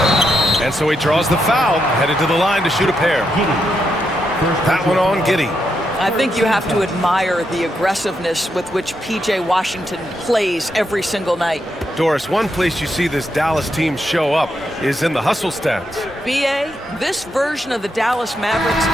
And so he draws the foul, headed to the line to shoot a pair. That one on Giddey. I think you have to admire the aggressiveness with which P.J. Washington plays every single night. Doris, one place you see this Dallas team show up is in the hustle stats. B.A., this version of the Dallas Mavericks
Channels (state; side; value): normal; both; correlation 0.82